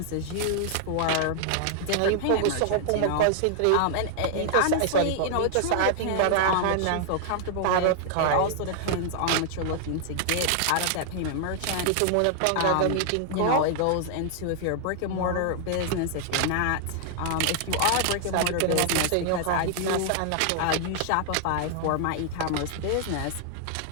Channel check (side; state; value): both; different; correlation 0.00